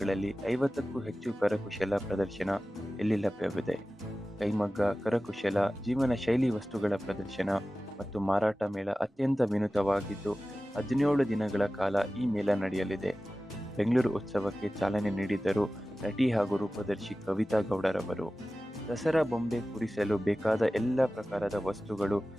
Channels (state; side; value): normal; both; correlation 0.96